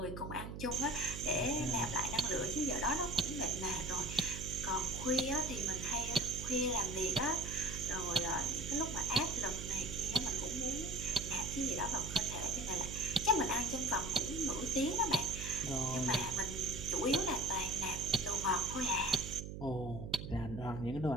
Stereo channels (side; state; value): right; noise; hum, 8 dB below the sound